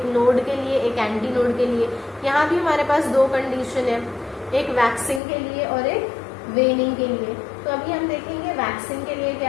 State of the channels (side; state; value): right; drops out; at 5.2 s